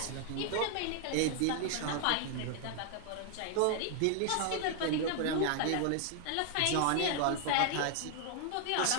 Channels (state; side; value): different; both; correlation 0.00